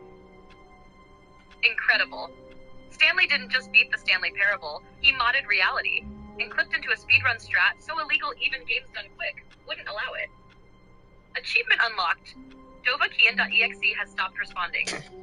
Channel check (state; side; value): identical; both; correlation 1.00